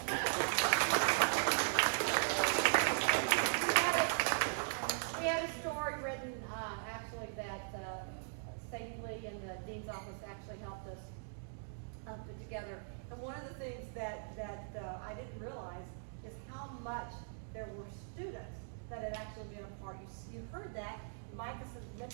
We had a story written, actually, that Sadie Lee and the Dean's office actually helped us put together. And one of the things that I didn't realize is how much there were students that had actually been a part. You heard that. Mike has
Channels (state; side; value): silent; left; digital silence